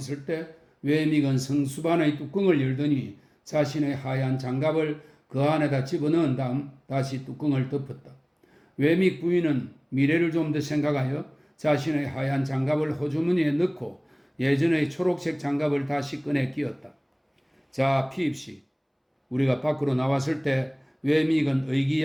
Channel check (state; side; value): identical; both; correlation 1.00